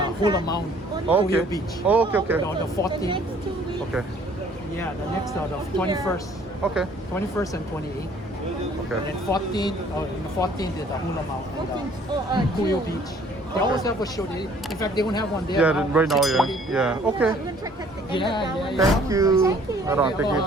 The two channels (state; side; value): normal; both; correlation 0.57